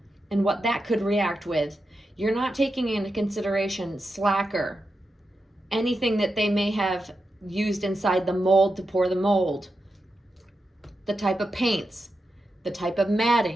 and what that could react with, you're not taking into consideration slacker, anything that they may have used inside the mold to pour the mold, the type of paints, the type of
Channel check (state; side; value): normal; both; correlation 0.89